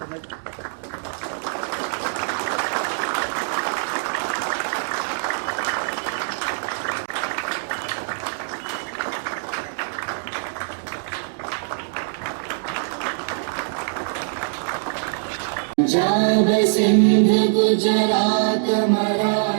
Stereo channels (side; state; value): left; silent; digital silence